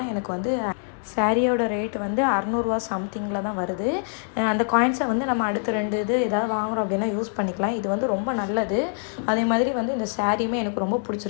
எனக்கு வந்து சாரியோட ரேட்டு வந்து 600 சம்திங்கில் தான் வருது. அந்த காயின்ஸை வந்து நம்ம அடுத்த 2 இது ஏதாவது வாங்குகிறோம் அப்படின்னா யூஸ் பண்ணிக்கலாம். இது வந்து ரொம்ப நல்லது. அதே மாதிரி வந்து இந்த சாரியுமே எனக்கு ரொம்ப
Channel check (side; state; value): right; silent; digital silence